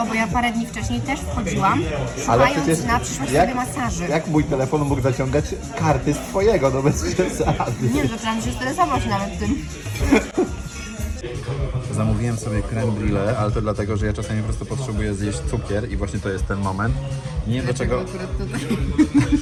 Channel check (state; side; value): identical; both; correlation 1.00